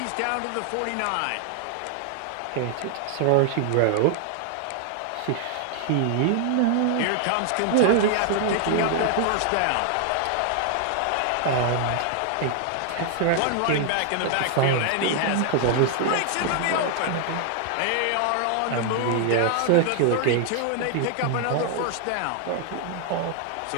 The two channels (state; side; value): different; both; correlation 0.00